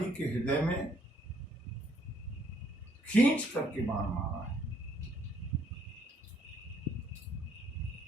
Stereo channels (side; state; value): both; normal; correlation 0.67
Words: के हृदय में खींच करके बाण मारा है।